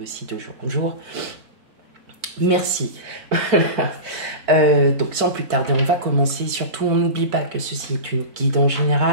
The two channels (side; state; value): left; late; 4.5 ms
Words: aussi de jour en jour. Merci. Donc sans plus tarder, on va commencer. Surtout, on n'oublie pas que ceci est une guide en